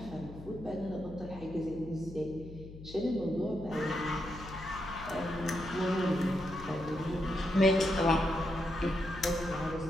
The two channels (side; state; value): left; noise; hum, 14 dB below the sound